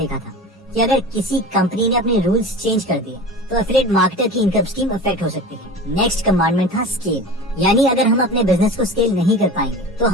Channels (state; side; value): normal; both; correlation 0.33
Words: था कि अगर किसी कंपनी ने अपने रूल्स चेंज कर दिए तो एफिलिएट मार्केटर की इनकम स्कीम अफेक्ट हो सकती है। नेक्स्ट कमांडमेंट था स्केल, यानी अगर हम अपने बिजनेस को स्केल नहीं कर पाएंगे तो